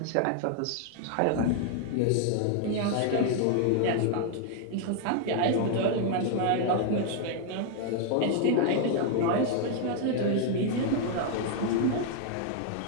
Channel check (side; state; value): both; different; correlation 0.00